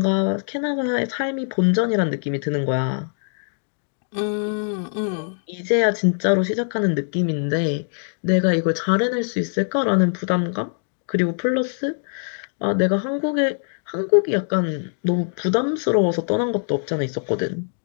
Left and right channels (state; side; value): silent; right; digital silence